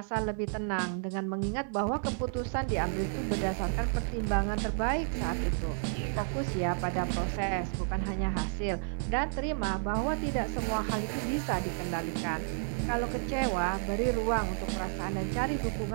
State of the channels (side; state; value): left; silent; 57 dB below the other